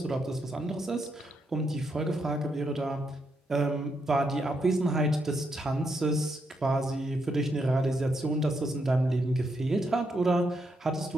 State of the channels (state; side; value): normal; both; correlation 0.80